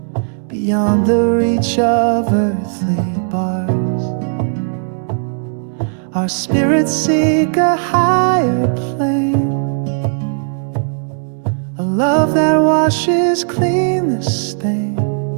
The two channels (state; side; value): silent; left; digital silence